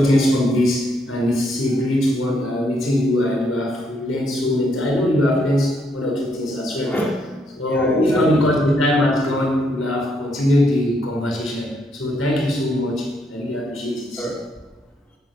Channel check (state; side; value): normal; both; correlation 0.74